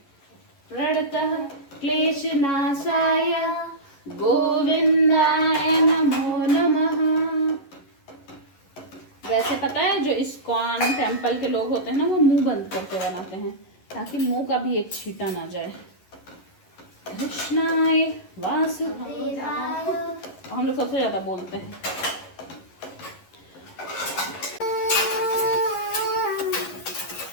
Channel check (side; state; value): right; late; 11 ms